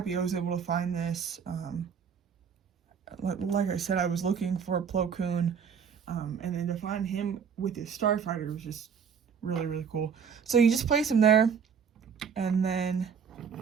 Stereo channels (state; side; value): quieter; left; 6.8 dB